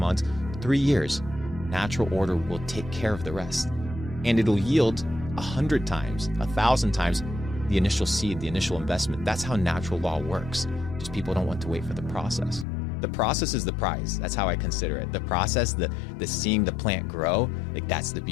3 years, natural order will take care of the rest. And it'll yield 100 times, 1,000 times the initial seed, the initial investment. That's how natural law works. Just people don't want to wait for the process. The process is the prize. That's how I consider it. The process, the seeing the plant grow, like that's the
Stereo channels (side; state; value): right; drops out; at 12.7 s